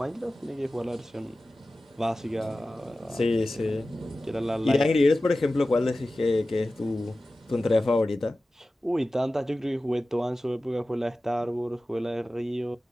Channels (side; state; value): both; normal; correlation 0.95